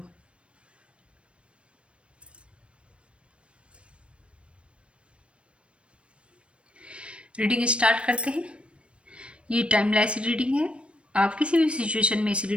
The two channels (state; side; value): late; left; 0.060 ms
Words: रीडिंग स्टार्ट करते हैं। ये टाइमलेस रीडिंग है, आप किसी भी सिचुएशन में इस